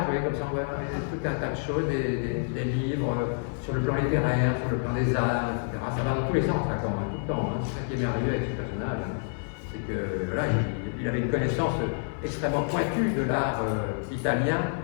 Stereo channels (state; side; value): silent; right; 59 dB below the other